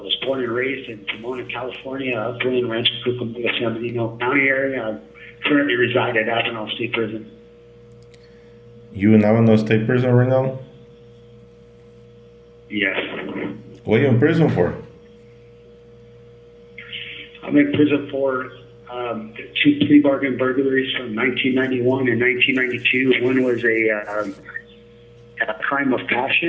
born and raised in Pomona, California, Upland, Rancho Cucamonga, San Bernardino County area. I currently reside at Avenal State Prison. You in Avondale State Prison right now? Yes. What are you in prison for? I'm in prison for two plea bargain burglaries from 1991 and 1992. One was a crime of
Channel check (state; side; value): identical; both; correlation 1.00